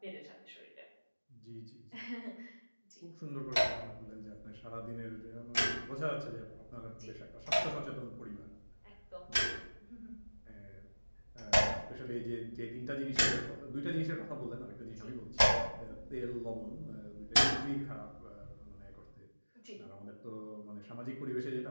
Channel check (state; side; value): inverted; both; correlation -1.00